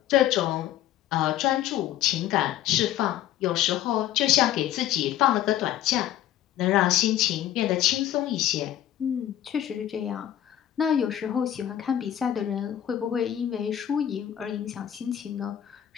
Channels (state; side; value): quieter; right; 11.6 dB